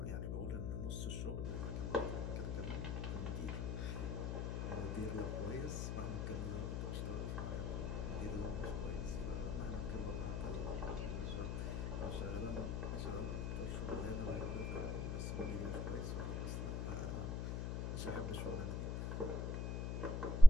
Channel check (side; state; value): left; noise; hum, 2 dB below the sound